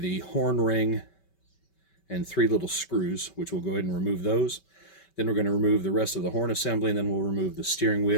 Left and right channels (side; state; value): right; late; 5.2 ms